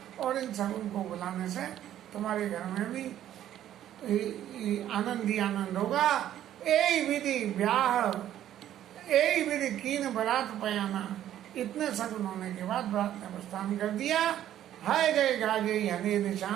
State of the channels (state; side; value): quieter; left; 11.7 dB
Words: और इन सगुन को बुलाने से तुम्हारे घर में भी आनंद ही आनंद होगा। यही विधि ब्याह, यही विधि कीन बरात पयाना। इतने सगुन होने के बाद बरात ने प्रस्थान कर दिया। हाय गए गाजे हने